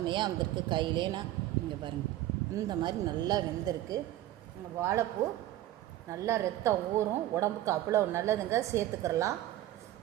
வந்திருக்கு. கையிலே நான் இங்கே பாருங்கள், இந்த மாதிரி நல்லா வெந்திருக்கு. வாழைப்பூ நல்லா ரத்தம் ஊறும், உடம்புக்கு அவ்வளோ நல்லதுங்க. சேர்த்துக்கிறலாம்.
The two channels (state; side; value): quieter; left; 14.2 dB